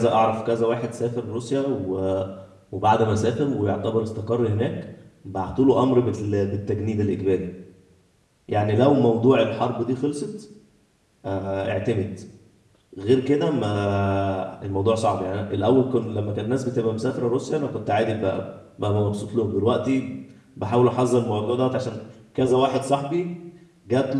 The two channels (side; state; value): both; identical; correlation 1.00